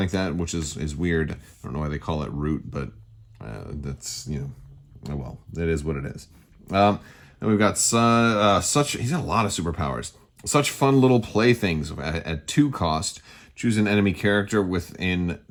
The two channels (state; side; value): identical; both; correlation 1.00